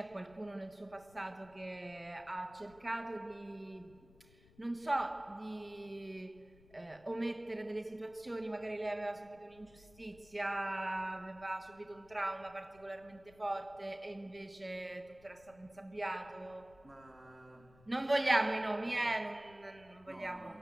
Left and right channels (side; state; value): left; noise; rumble, 24 dB below the sound